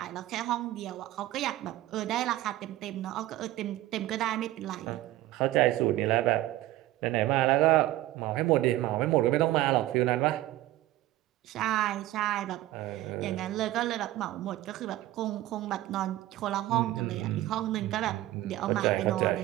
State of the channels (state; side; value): quieter; left; 15.6 dB